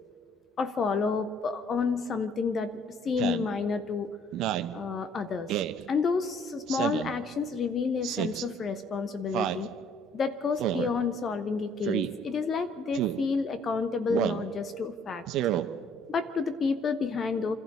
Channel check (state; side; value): normal; both; correlation 0.61